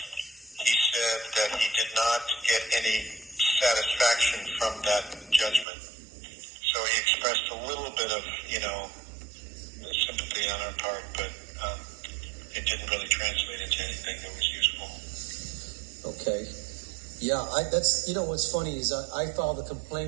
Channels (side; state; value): left; drops out; at 5.7 s